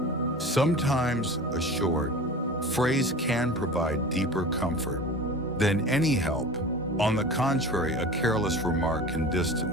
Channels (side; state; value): both; normal; correlation 0.36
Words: Sometimes a short phrase can provide deeper comfort than any help. On the contrary, a careless remark can